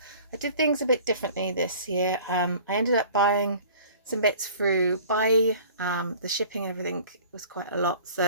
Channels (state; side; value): inverted; both; correlation -0.47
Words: I did things a bit differently this year. I ended up buying some bits through Buy. The shipping and everything was quite a lot,